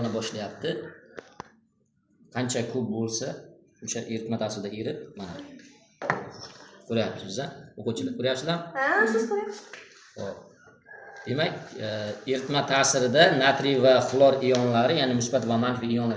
boshlayapti. Qancha ko'p bo'lsa, o'sha eritma ta'sirida erib, mana ko'ryapsiz-a? O'quvchilar ko'ryapsizlar? Ha, siz ko'ryapsiz. Xo'p. Demak, eritma ta'sirida natriy va xlor ionlari, ya'ni musbat va manfiy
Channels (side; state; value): both; identical; correlation 1.00